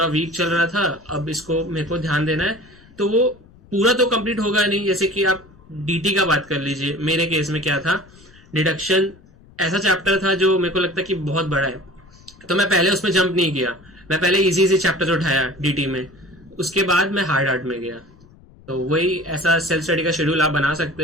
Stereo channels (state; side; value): noise; left; rumble, 26 dB below the sound